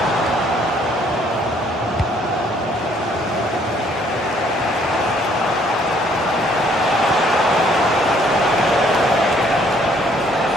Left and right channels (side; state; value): both; normal; correlation 0.63